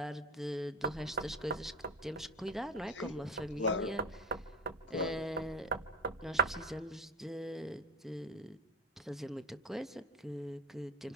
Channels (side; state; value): both; normal; correlation 0.24